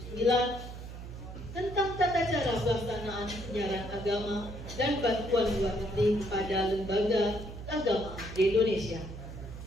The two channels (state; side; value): noise; right; hum, 11 dB below the sound